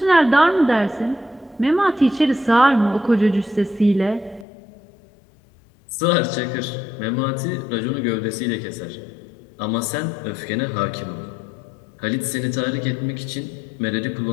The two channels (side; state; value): right; drops out; at 4.5 s